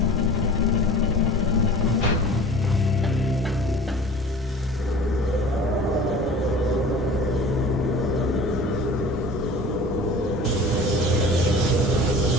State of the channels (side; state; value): both; normal; correlation 0.41